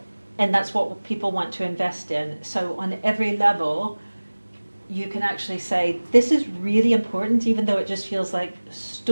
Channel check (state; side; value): inverted; both; correlation -1.00